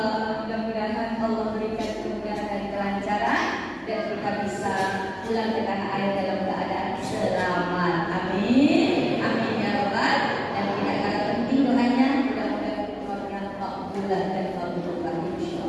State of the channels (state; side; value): identical; both; correlation 1.00